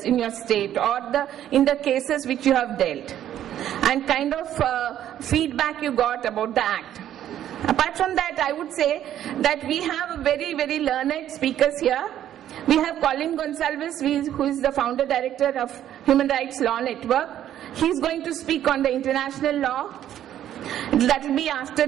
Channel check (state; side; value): quieter; left; 11.3 dB